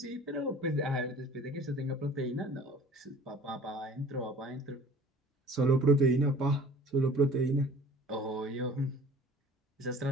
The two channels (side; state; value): both; normal; correlation 0.47